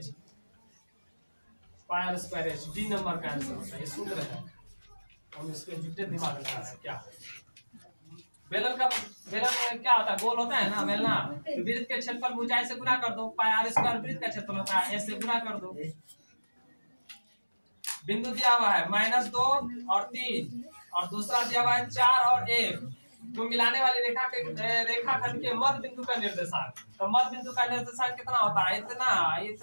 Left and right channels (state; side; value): inverted; both; correlation -1.00